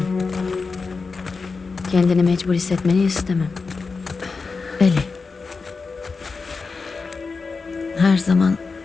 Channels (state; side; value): quieter; right; 4.5 dB